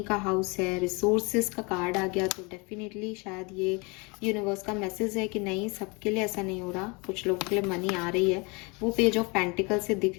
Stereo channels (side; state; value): right; quieter; 29.1 dB